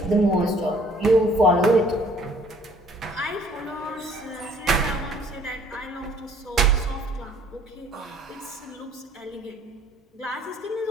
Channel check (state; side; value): normal; both; correlation 0.58